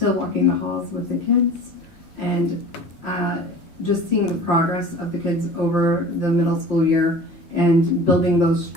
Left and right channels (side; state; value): right; late; 5.7 ms